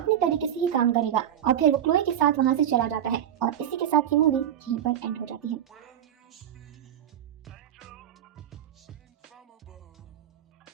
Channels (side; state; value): left; quieter; 10.3 dB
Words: तरीके से ही काम करेगा और फिर वो क्लोई के साथ वहाँ से चला जाता है और इसी के साथ ये मूवी यहीं पर एंड हो जाती है।